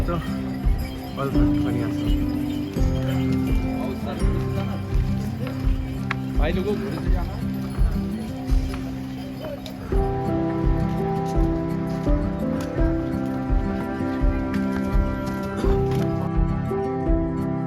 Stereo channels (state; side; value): identical; both; correlation 1.00